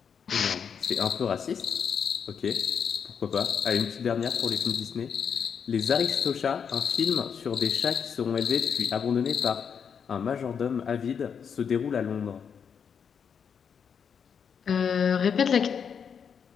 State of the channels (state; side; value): quieter; right; 7.0 dB